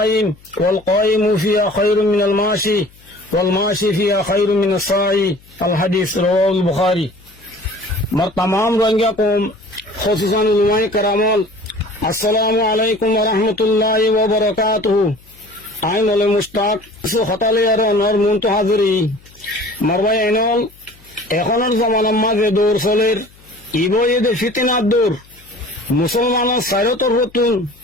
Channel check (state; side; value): noise; left; hum, 27 dB below the sound